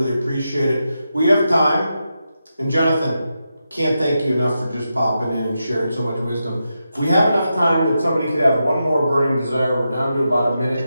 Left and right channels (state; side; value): inverted; both; correlation -0.88